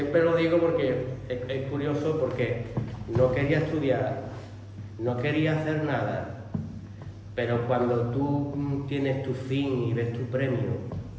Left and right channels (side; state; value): both; identical; correlation 1.00